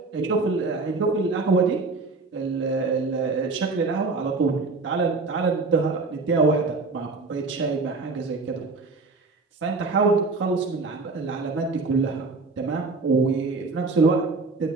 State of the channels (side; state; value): left; quieter; 3.8 dB